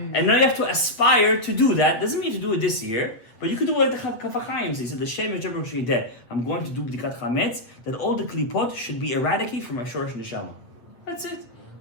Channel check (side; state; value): right; late; 8.2 ms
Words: and now you have to aspire to do that. Doesn't mean to do it this year, but you could do it like the Kaf HaChaim says. He said, the Shem Yechebro Shideh. I'm going to do B'dikat Chametz, that all the klipot should be eradicated from my Shorosh Neshama. That's it.